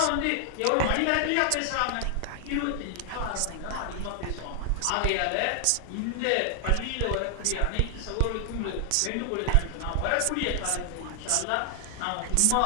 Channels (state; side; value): different; both; correlation 0.00